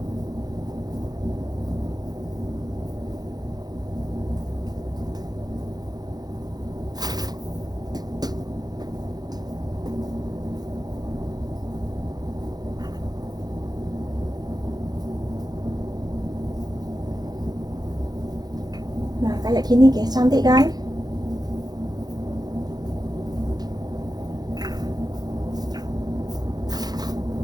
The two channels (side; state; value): left; late; 0.19 ms